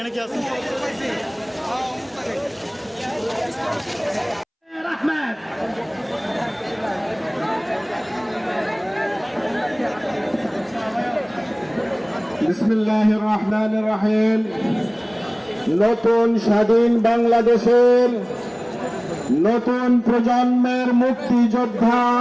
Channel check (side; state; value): both; identical; correlation 1.00